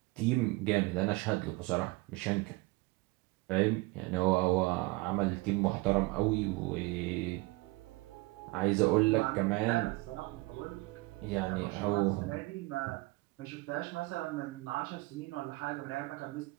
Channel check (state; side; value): quieter; left; 23.2 dB